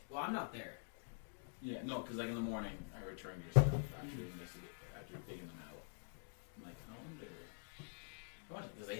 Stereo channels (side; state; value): right; silent; digital silence